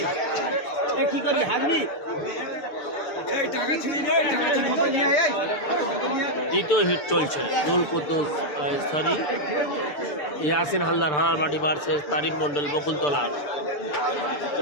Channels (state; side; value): late; right; 6.8 ms